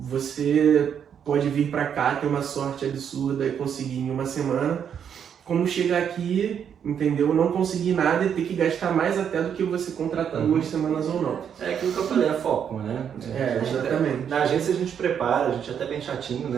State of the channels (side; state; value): left; quieter; 8.2 dB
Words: Você pode vir para cá, ter uma sorte absurda e conseguir em 1 semana, como chegar aqui, entendeu? Não conseguir nada e ter que gastar mais até do que você contratar 2 semanas ou não. É aquilo que eu falei, é foco, né? Exatamente. Na agência a gente prepara, a gente é até bem chatinho,